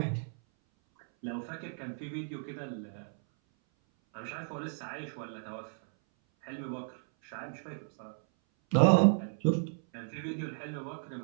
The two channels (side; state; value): left; silent; 55 dB below the other